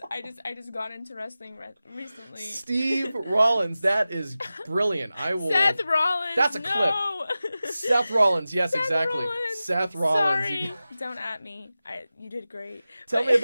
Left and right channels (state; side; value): inverted; both; correlation -0.95